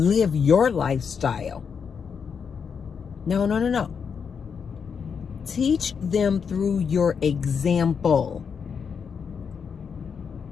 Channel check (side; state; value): right; quieter; 6.4 dB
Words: your lifestyle. No. Teach them through your example.